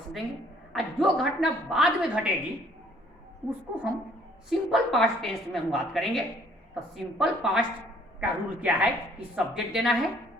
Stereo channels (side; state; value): both; normal; correlation 0.60